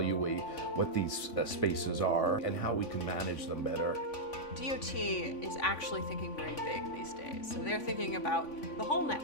what these spaces are and how we can manage them better. DOT is actually thinking very big these days. So they're thinking about the whole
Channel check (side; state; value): right; late; 3.5 ms